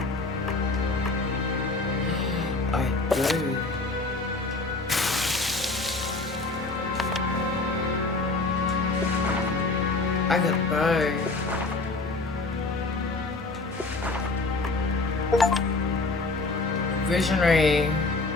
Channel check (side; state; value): right; quieter; 3.4 dB